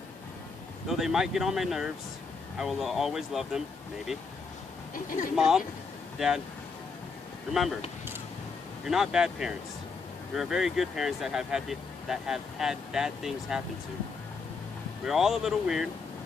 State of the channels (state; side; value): quieter; right; 4.7 dB